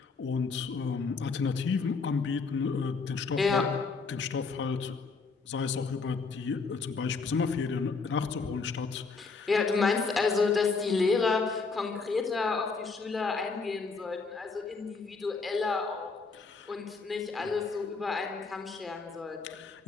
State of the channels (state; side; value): quieter; right; 4.5 dB